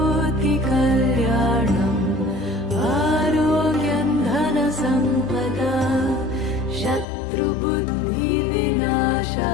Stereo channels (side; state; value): right; drops out; at 7.1 s